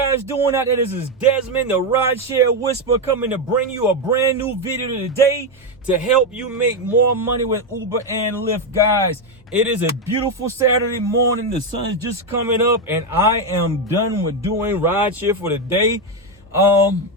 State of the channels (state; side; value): normal; both; correlation 0.06